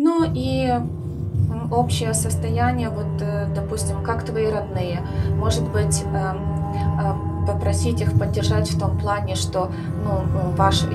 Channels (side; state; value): both; identical; correlation 1.00